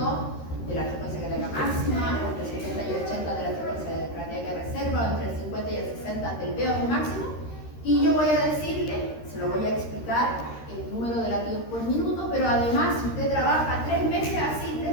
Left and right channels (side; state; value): right; late; 13 ms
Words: de la frecuencia cardíaca máxima, o entre el 70 y el 80 de la frecuencia cardíaca de reserva, o entre el 50 y el 60 del VO2 máximo, y yo voy a decirle, se lo voy a explicar, el número de latidos por minuto, pero además si usted trabaja 3 meses así, 3